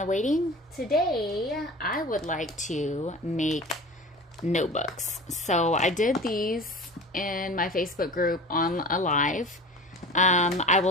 Waiting. Today, I would like to make notebooks. So I did these in my Facebook group on a live. I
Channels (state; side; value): normal; both; correlation 0.37